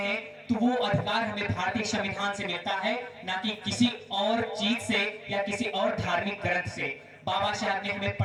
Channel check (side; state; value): both; identical; correlation 1.00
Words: तो वो अधिकार हमें भारतीय संविधान से मिलता है, ना कि किसी और चीज से या किसी और धार्मिक ग्रंथ से। बाबा साहब ने हमें